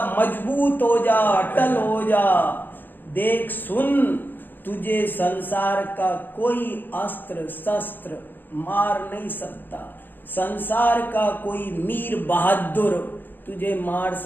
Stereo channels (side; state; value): right; late; 0.093 ms